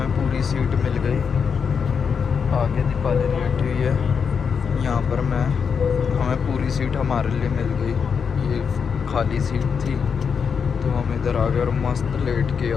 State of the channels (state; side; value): quieter; right; 6.3 dB